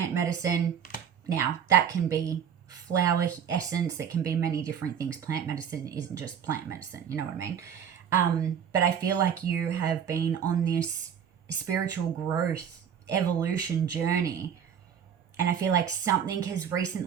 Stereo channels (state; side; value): quieter; left; 8.2 dB